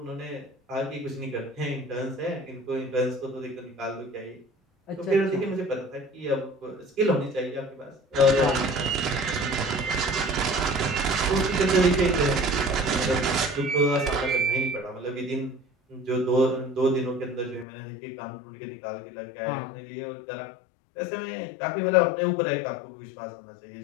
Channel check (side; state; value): right; drops out; at 17.7 s